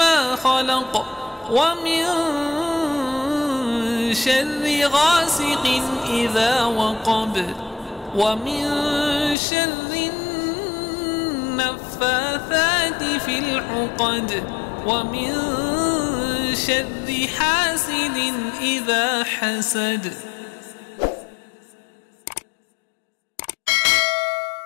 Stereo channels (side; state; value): right; drops out; at 9.3 s